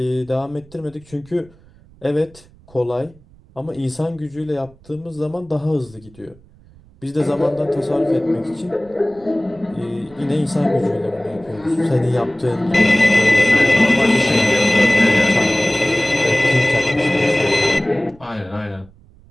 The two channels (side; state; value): right; noise; rumble, 26 dB below the sound